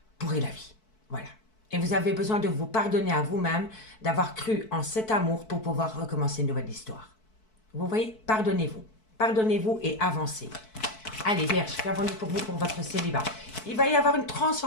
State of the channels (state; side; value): late; right; 4.6 ms